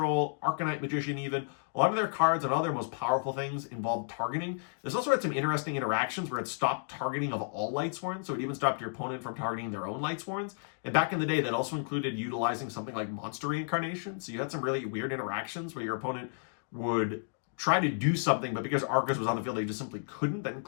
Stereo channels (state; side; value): silent; right; digital silence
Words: Arcanite Magician even. A lot of their cards and all their most powerful things involved targeting. There's also had some interesting interactions where it stopped targeting of all Lightsworns, so it even stopped your opponent from targeting their own Lightsworns. And back in the day, that also included utilizing something like Monster Reincarnation. So you had some really weird interactions where your opponent would try to do something, but because Arcus was on the field, they just simply couldn't. That